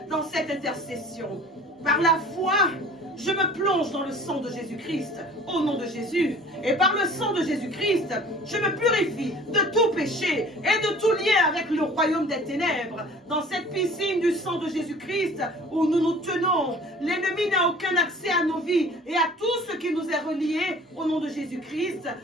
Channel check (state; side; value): normal; both; correlation 0.47